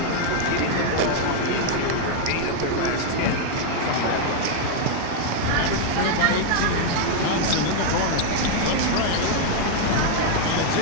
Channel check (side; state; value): both; different; correlation 0.00